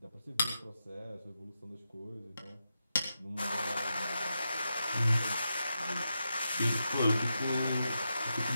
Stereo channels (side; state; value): both; inverted; correlation -0.87